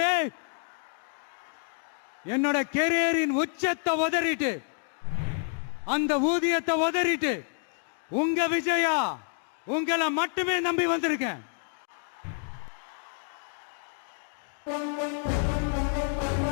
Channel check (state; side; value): silent; right; 59 dB below the other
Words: என்னோட கெரியரின் உச்சத்தை உதறிட்டு அந்த ஊதியத்தை உதறிட்டு உங்க விஜயா உங்களை மட்டுமே நம்பி வந்திருக்கேன்.